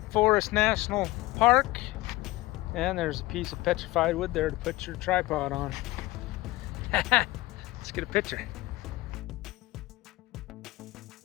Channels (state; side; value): quieter; right; 19.5 dB